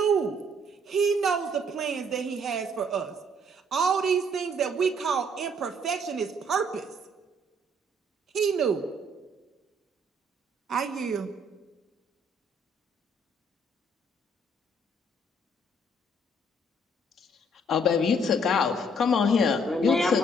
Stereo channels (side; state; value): both; normal; correlation 0.65